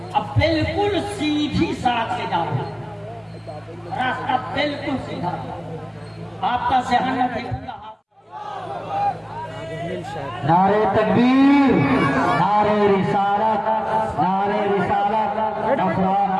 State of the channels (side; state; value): both; identical; correlation 1.00